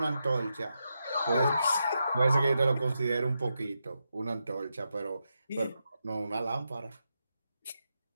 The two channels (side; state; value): both; inverted; correlation -0.86